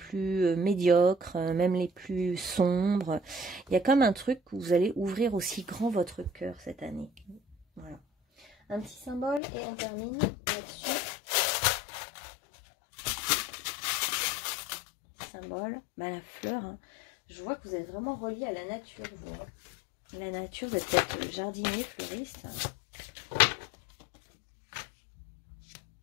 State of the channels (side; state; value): right; drops out; at 9.4 s